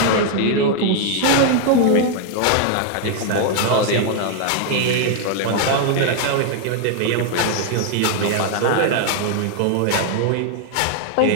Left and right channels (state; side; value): different; both; correlation 0.00